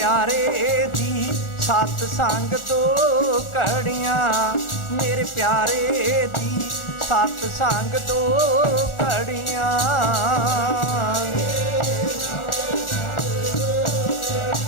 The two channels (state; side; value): late; right; 1.4 ms